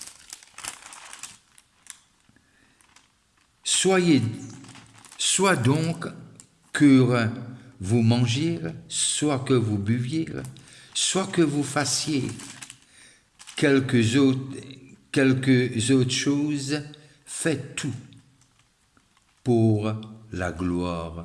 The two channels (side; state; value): both; identical; correlation 1.00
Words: Soit donc que vous mangiez, soit que vous buviez, soit que vous fassiez quelques autres choses, faites tout pour la